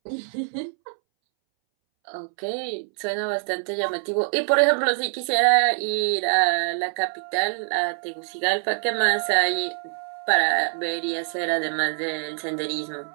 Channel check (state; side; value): silent; left; 62 dB below the other